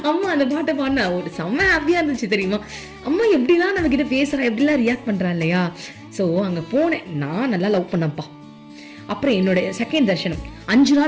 அம்மா அந்த பாட்டை பாடினா ஒரு செம்ம ஹாப்பியா இருந்துச்சு தெரியுமா. அம்மா எப்படிலாம் நம்ம கிட்ட பேசுறா, எப்படிலாம் ரியாக்ட் பண்றா இல்லையா. சோ அங்க போனேன், நான் நல்லா லவ் பண்ணப்பா. அப்புறம் என்னோட செகண்ட் தர்ஷனம் 5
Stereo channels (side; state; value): both; identical; correlation 1.00